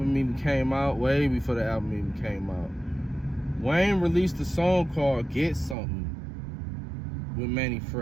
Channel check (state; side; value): drops out; left; at 5.8 s